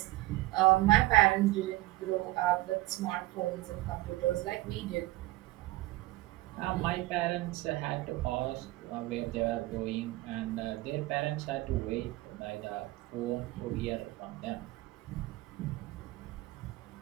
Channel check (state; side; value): quieter; left; 19.0 dB